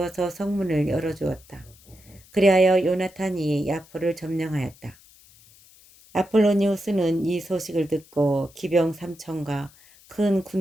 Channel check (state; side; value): noise; left; hiss, 26 dB below the sound